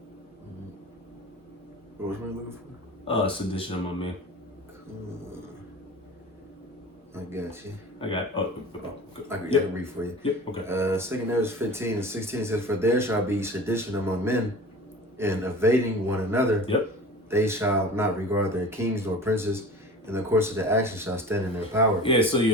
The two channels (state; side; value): normal; both; correlation 0.38